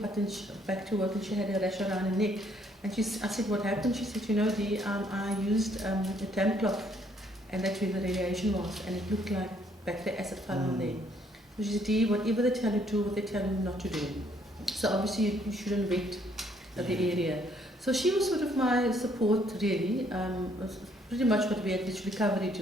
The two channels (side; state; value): both; normal; correlation 0.67